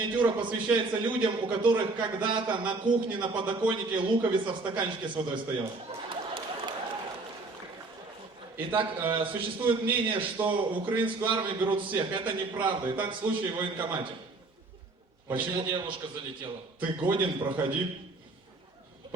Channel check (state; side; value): quieter; left; 3.5 dB